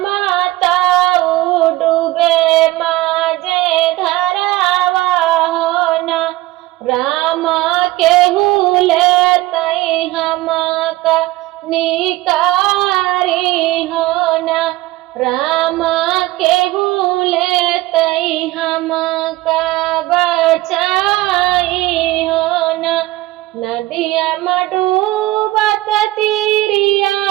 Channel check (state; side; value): quieter; left; 18.0 dB